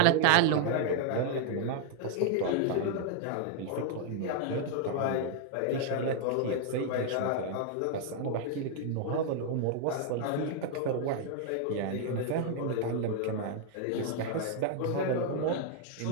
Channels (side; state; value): both; different; correlation 0.00